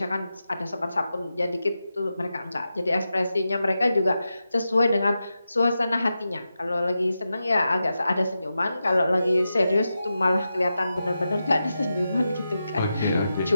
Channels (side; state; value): both; inverted; correlation -0.90